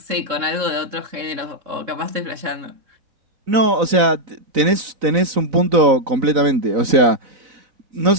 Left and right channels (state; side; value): late; left; 4.0 ms